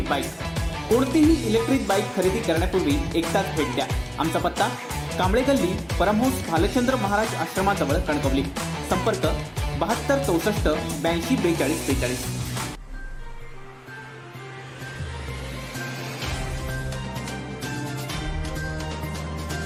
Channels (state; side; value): identical; both; correlation 1.00